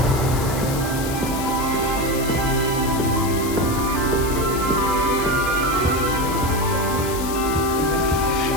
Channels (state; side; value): noise; left; hiss, 9 dB below the sound